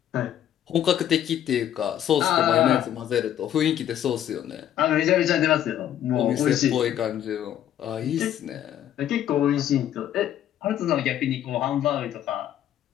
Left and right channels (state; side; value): quieter; right; 11.0 dB